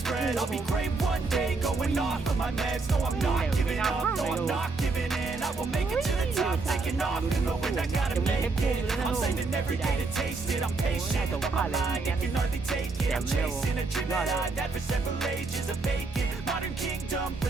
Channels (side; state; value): left; quieter; 3.8 dB